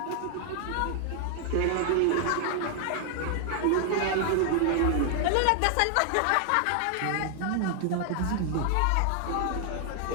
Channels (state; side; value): different; both; correlation 0.00